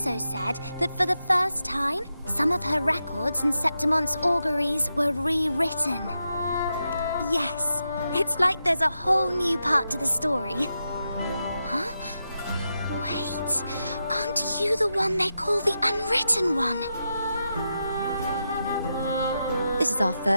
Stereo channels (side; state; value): both; inverted; correlation -0.87